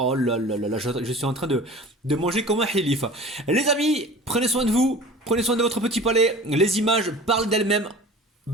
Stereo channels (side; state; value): both; normal; correlation 0.40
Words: là là là là, je suis en train de manger comme un hilif. Les amis, prenez soin de vous, prenez soin de votre petit palais. Les images parlent d'elles-mêmes.